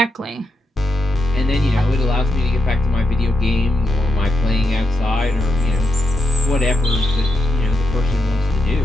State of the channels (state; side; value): normal; both; correlation 0.84